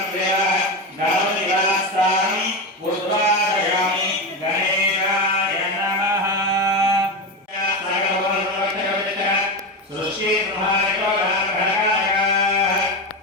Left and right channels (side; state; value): both; normal; correlation 0.17